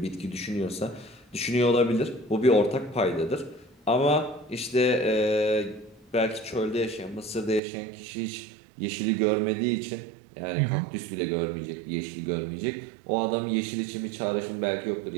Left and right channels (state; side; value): drops out; left; at 7.6 s